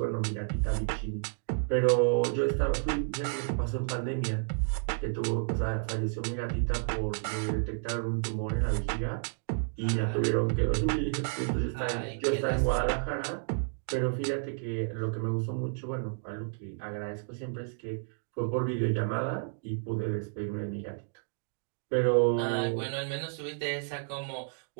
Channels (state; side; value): silent; left; digital silence